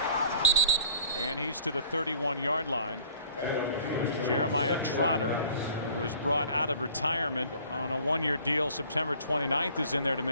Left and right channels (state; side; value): inverted; both; correlation -0.50